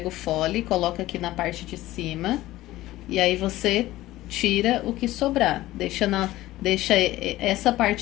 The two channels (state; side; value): quieter; right; 16.4 dB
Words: o fole, coloca aqui na parte de cima, e aí você tira o que sobrar. Deixa essa